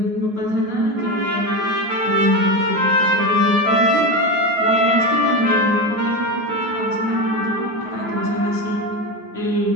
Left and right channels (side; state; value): left; late; 9.4 ms